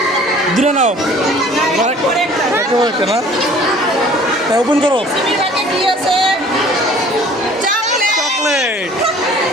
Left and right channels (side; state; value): both; normal; correlation 0.51